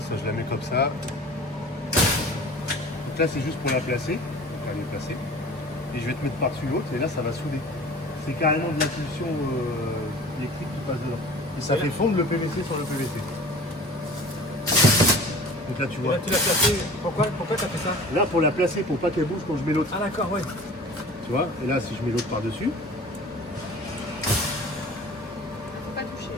ça je la mets comme ça. Donc là c'est juste pour la placer. Donc elle est placée. Et je vais te mettre par-dessus l'autre et là ça va souder. C'est carrément de l'impulsion électrique qui passe dedans. Et ça fait fondre le PVC sur le PVC. Donc là tu Et vois. là, tu l'as placé. Pourquoi t'as fait ça? Là pour la placer pour pas qu'elle bouge quand je mets l'autre. Ah d'accord, ouais. Tu vois, et là si je mets l'autre par-dessus, Faut pas toucher.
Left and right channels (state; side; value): normal; both; correlation 0.42